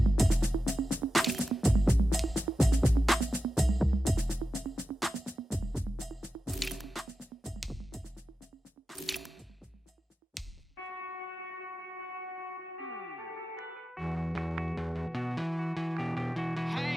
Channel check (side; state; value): both; normal; correlation 0.91